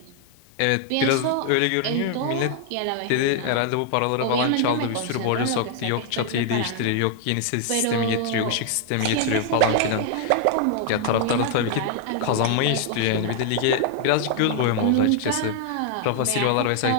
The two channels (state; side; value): different; both; correlation 0.00